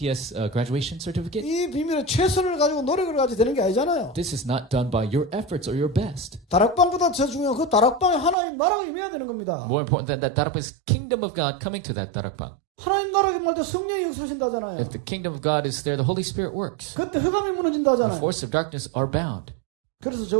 graduation certificate? 이 비밀은 최선을 가지고 노력을 가지고 되는 게 아니잖아요. This is not done by your efforts or your best. 다락방보다 더 중요한 그 다락방에 하나님 나라가 임해야 되는 겁니다. More important than that, darakbang is kingdom of God coming to that darakbang. 하나님 나라가 임할 때 성령이 역사하신다잖아요. If the kingdom of God is there, the Holy Spirit works. 그때 흑암이 The 무너진다잖아요. forces of darkness are bound. 그래서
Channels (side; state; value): left; drops out; at 8.3 s